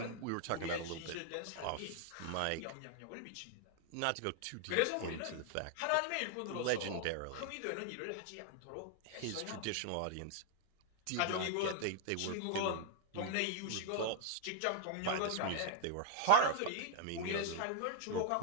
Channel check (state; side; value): different; both; correlation 0.00